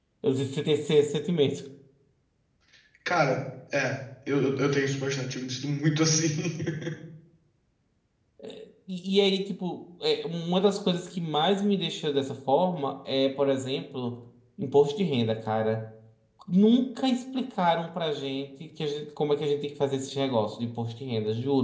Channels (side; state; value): both; identical; correlation 1.00